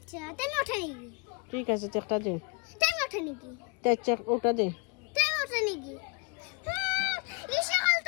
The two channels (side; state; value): right; quieter; 31.1 dB